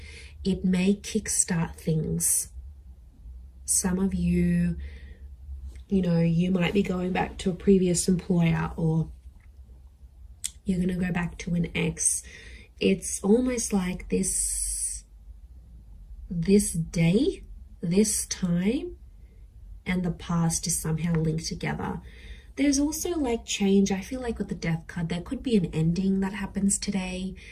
It may kickstart things. Some of you, you might be going back to a previous employer, or you're going to go back to an ex. It's almost like this day, this time, and the past is somehow linked together. There's also like change. I feel like with the Death card, there could be an ending that happens today.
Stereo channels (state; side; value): identical; both; correlation 1.00